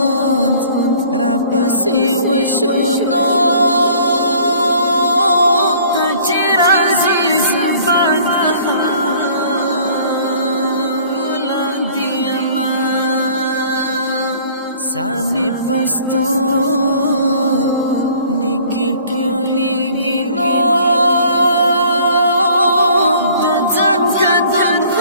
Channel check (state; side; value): inverted; both; correlation -0.53